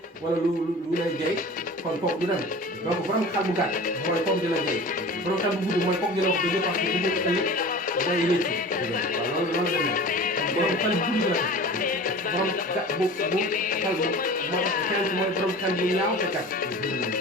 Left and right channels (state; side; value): normal; both; correlation 0.38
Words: wala lu lay jay kon kooku du dem donc borom xel bu gàtt mooy kooku dina jay borom xel bu gudd mooy kooku dina wax dëgg parce que bu nekk mooy wécc waaw loolu demee borom xel bu gudd la borom bu xel mooy borom xel bu ñaaw te kat